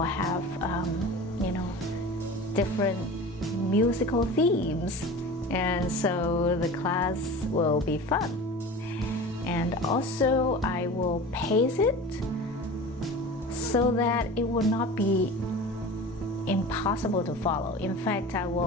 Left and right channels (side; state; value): both; normal; correlation 0.35